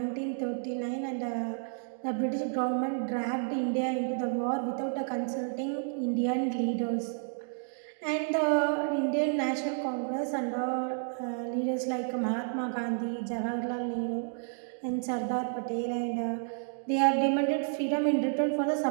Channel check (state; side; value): silent; left; 57 dB below the other